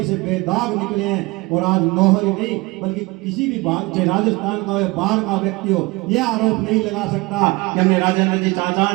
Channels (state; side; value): quieter; left; 23.7 dB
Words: से बेदाग निकले हैं। और आज नौहर नहीं बल्कि किसी भी चाहे राजस्थान का हो बाहर का व्यक्ति हो, यह आरोप नहीं लगा सकता कि हमने राजेंद्र जी चाचा